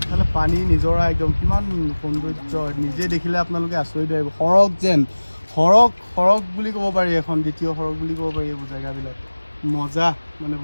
পানী নিজৰা একদম কিমান সৌন্দৰ্য নিজে দেখিলে আপোনালোকে আচৰিত আহিব সৰগ যেন সৰগ বুলি ক'ব পাৰি এখন দ্বিতীয় সৰগ বুলি ক'ব পাৰি এইবোৰ জেগাবিলাক মজা মানে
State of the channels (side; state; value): both; inverted; correlation -1.00